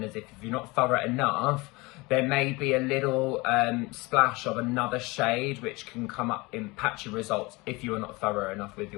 is if you're not thorough enough, there may be a little splash of another shade which can come up in patchy results if you are not thorough enough with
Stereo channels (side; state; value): right; quieter; 24.0 dB